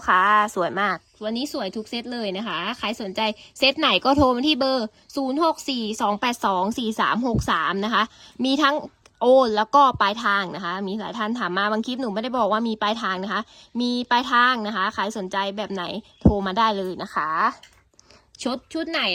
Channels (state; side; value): identical; both; correlation 1.00